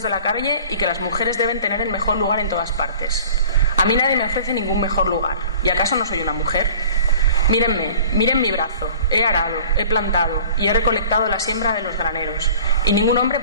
de la calle y que las mujeres deben tener el mejor lugar en todas partes. A mí nadie me ofrece ningún mejor lugar. ¿Y acaso no soy una mujer? Mírenme, miren mi brazo. He arado, he plantado y he recolectado la siembra de los graneros. Y ningún hombre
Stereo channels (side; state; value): both; inverted; correlation -0.45